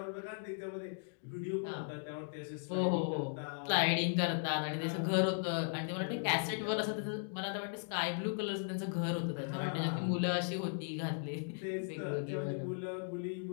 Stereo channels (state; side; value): silent; right; digital silence